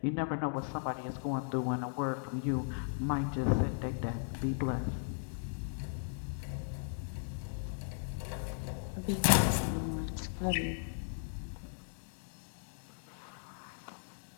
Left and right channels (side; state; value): right; silent; digital silence